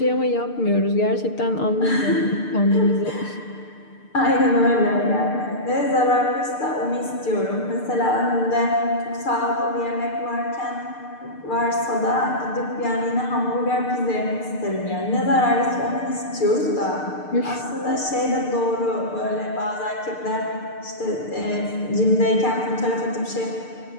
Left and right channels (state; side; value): late; right; 6.7 ms